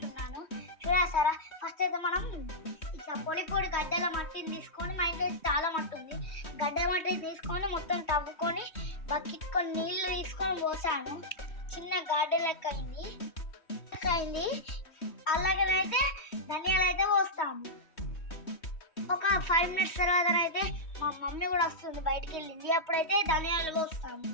చూడేస్తారా? ఫస్ట్ అయితే మనం ఇట్లా పొడి పొడి గడ్డల మట్టిని తీసుకొని, మా ఇంట్లో చాలా మట్టి ఉంది, గడ్డ మట్టిని తీసుకొని మొత్తం తవ్వుకొని బకెట్ కొన్ని నీళ్లు తీసుకొని పోసాను. చిన్న గార్డెన్ లెక్క అయింది. అలాగనైతే ధనియాలు అయితే పోస్తాము. ఒక 5 minutes తర్వాత అయితే మా మమ్మీ కూడా వస్తుంది, బయటికి వెళ్ళింది. అప్పుడైతే ధనియాలు పోస్తాము.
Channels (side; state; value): right; late; 3.1 ms